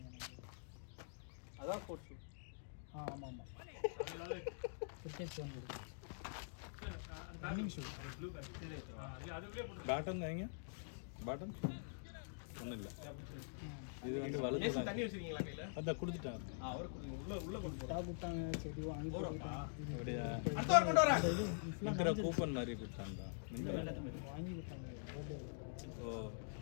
அதான் ஸ்போர்ட்ஸ் ஷூ. ஆமா ஆமா. அதனால கிரிக்கெட் ஷூ இருக்கு. ரன்னிங் ஷூ ப்ளூ பேட் இல்ல அதுக்குள்ளே போட்டு பேட்டன் வைங்க பேட்டன் ஒன்றும் இல்லை இது வந்து வலது ஏசி தண்ணி வச்சிருக்கீங்களா கையில? அதான் கொடுத்துட்டாங்க அவர் உள்ள கொண்டு போறோம். டா குட்டாங்க செடி வாங்கி போறாங்க. அப்படியா அடுத்த வாரம் கொண்டு வரேன். இருக்கிற கூப்பன் மாதிரி கொடுத்தாங்க வாங்கி கொடுத்தாங்க. பர்த்டே ஓ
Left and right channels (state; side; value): silent; right; digital silence